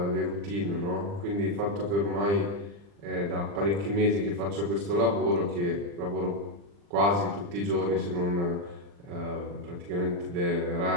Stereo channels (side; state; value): left; late; 40 ms